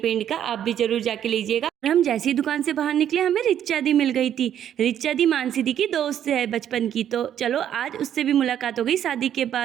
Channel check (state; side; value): quieter; left; 10.1 dB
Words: का, आप भी जरूर जाके लीजिएगा। और हम जैसी दुकान से बाहर निकले हमें रिचा दी मिल गई थी। रिचा दी मानसी दी की दोस्त है बचपन की, तो चलो आज उससे भी मुलाकात हो गई शादी के